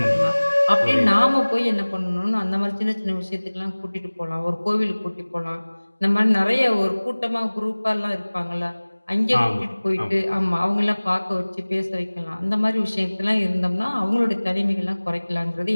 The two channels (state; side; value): inverted; both; correlation -1.00